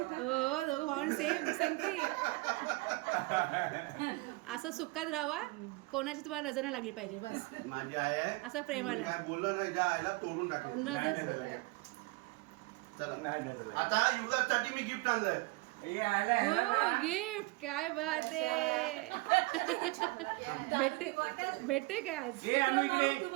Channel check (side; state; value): left; quieter; 23.6 dB